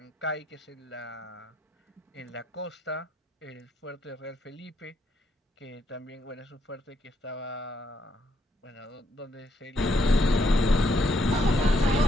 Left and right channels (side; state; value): both; normal; correlation 0.75